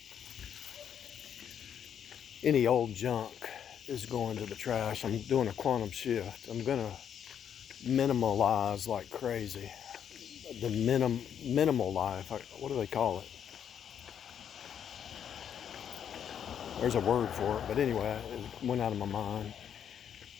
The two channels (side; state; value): right; quieter; 8.7 dB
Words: Any old junk is going to the trash. I'm doing a quantum shift. I'm gonna minimalize like crazy. The minimal life. What do they call it? There's a word for it, but anyway, it went out of my mind.